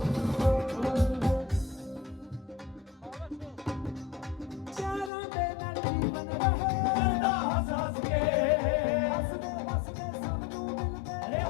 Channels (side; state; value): right; drops out; at 5.1 s